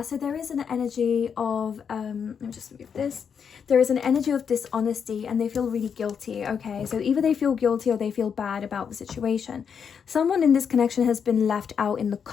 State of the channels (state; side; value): quieter; right; 7.0 dB